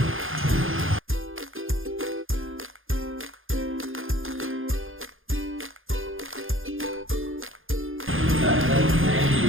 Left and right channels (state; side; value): late; left; 0.59 ms